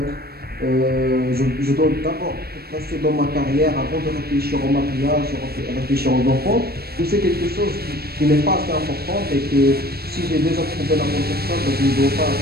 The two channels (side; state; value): left; late; 0.46 ms